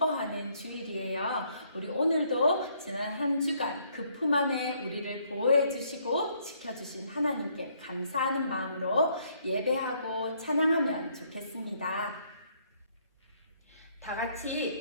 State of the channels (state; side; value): inverted; both; correlation -0.68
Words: 주일이에요. 우리 오늘도 지난 한 주간 그 품 안에 우리를 보호해 주시고 지켜주신 하나님께 감사하는 마음으로 예배하고 찬양하면 좋겠습니다. 다